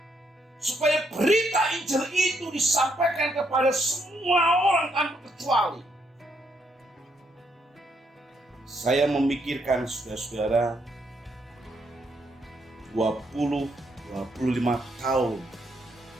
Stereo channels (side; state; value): both; normal; correlation 0.75